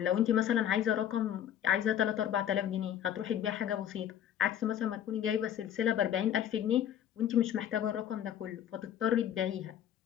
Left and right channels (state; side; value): quieter; right; 10.1 dB